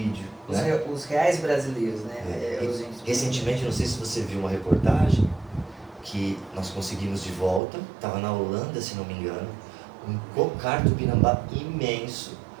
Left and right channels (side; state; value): left; drops out; at 7.6 s